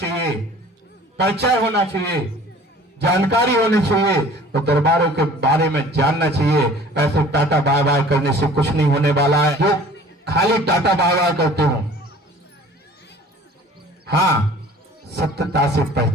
परिचय होना चाहिए, जानकारी होनी चाहिए, तो दरबारों के बारे में जानना चाहिए। ऐसे टाटा बाय बाय करने से कुछ नहीं होने वाला है। जो खाली टाटा बाय बाय करते हो, हाँ, सत्यता से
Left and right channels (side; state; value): both; normal; correlation 0.48